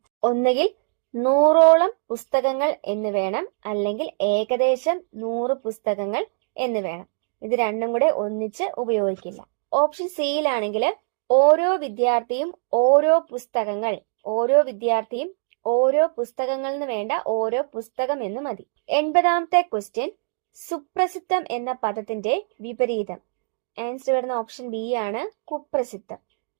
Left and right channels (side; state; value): left; silent; digital silence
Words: ഒന്നുകിൽ 100ഓളം പുസ്തകങ്ങൾ എന്ന് വേണം, അല്ലെങ്കിൽ ഏകദേശം 100 പുസ്തകങ്ങൾ എന്ന് വേണം. ഇത് രണ്ടും കൂടെ ഒന്നിച്ച് ഉപയോഗിക്കില്ല. ഓപ്ഷൻ സിയിലാണെങ്കിൽ ഓരോ വിദ്യാർത്ഥിയും ഓരോ പുസ്തകങ്ങൾ, ഓരോ വിദ്യാർത്ഥിയും ഓരോ പുസ്തകങ്ങൾ എന്ന് വേണ്ട, ഓരോ പുസ്തകം എന്ന് മതി. 80ാമത്തെ ക്വസ്റ്റ്യൻ, സുപ്രസിദ്ധം എന്ന പദത്തിന്റെ വിപരീതം. ആൻസർ വരുന്ന ഓപ്ഷൻ ബി ആണ്, കുപ്രസിദ്ധം.